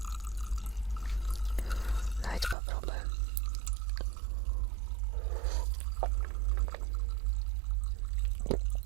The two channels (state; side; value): drops out; left; at 2.6 s